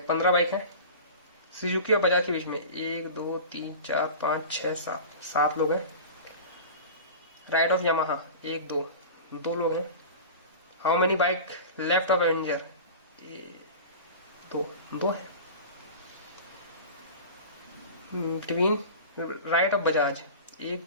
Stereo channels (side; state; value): both; inverted; correlation -0.34